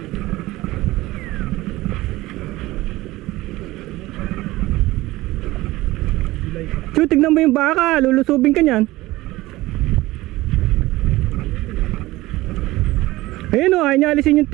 Chu, tignan mo yung baka. Lulusubin ka niyan. Ayun o, ayaw niya alisin yung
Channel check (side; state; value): left; quieter; 18.5 dB